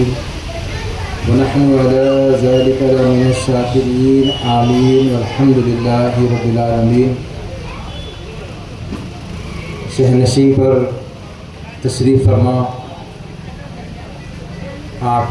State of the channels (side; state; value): both; identical; correlation 1.00